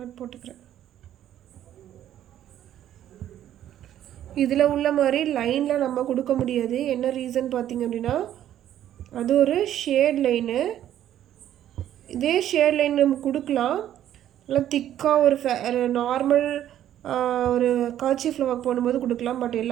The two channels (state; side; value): quieter; left; 11.5 dB